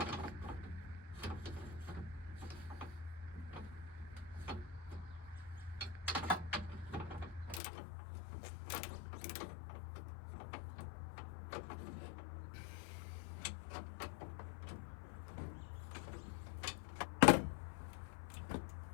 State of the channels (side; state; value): right; drops out; at 7.6 s